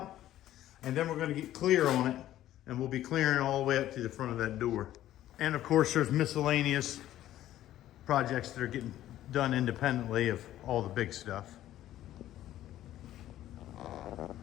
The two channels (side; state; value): right; quieter; 13.2 dB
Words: And then we're going to get clear on it. And we'll be clearing all the way up to the front of that door. And of course, there's miscellaneous projects that are getting done independently of all the big stuff.